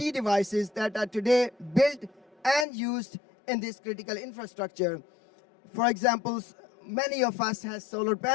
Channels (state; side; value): drops out; right; at 2.7 s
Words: devices that are today built and used in this critical infrastructure. For example, many of us have solar